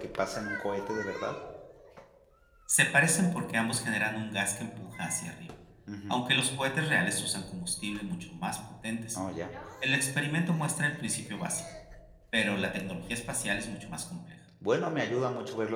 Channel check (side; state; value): both; identical; correlation 1.00